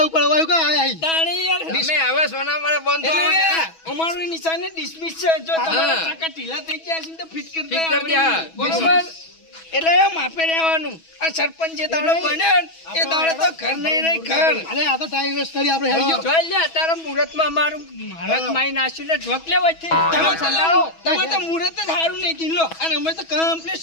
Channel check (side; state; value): right; late; 6.2 ms